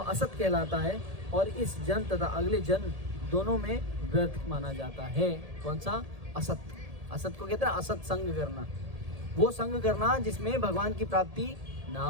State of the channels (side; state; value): left; late; 1.8 ms